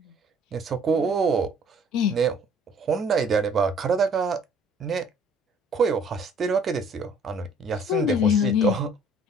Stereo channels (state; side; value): normal; both; correlation 0.56